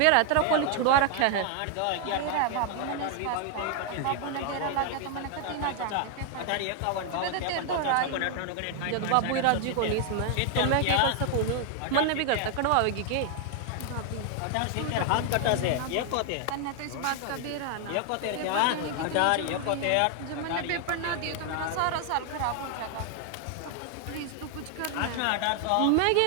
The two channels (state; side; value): different; both; correlation 0.00